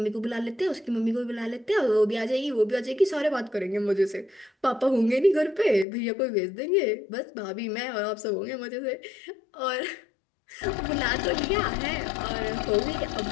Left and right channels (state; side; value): drops out; right; at 5.9 s